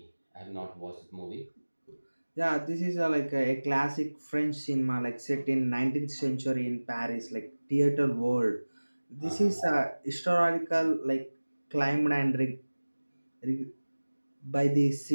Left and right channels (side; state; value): both; inverted; correlation -1.00